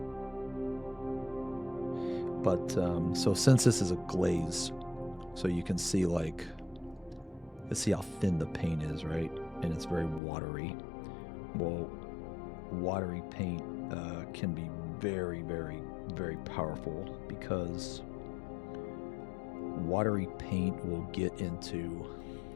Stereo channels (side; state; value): right; drops out; at 10.2 s